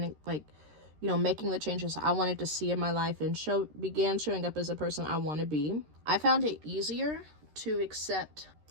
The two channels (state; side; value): late; left; 13 ms